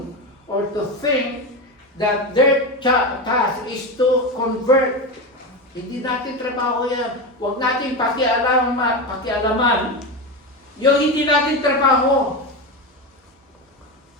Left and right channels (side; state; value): both; normal; correlation 0.18